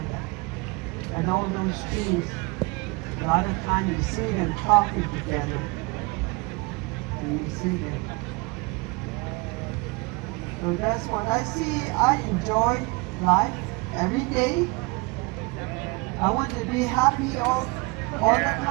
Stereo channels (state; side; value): quieter; left; 26.6 dB